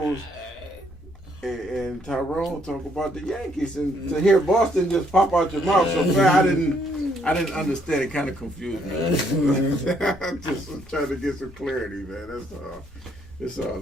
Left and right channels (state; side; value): normal; both; correlation 0.70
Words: and Tyrone talk about the Yankees, and to hear Boston just pop out your mouth so fast, I didn't understand. It kind of confused me. I'm just trying to get some clarity, man. That's all. It's all